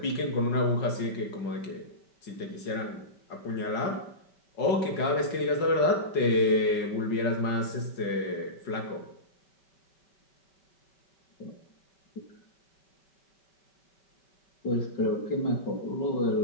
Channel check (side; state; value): right; late; 5.4 ms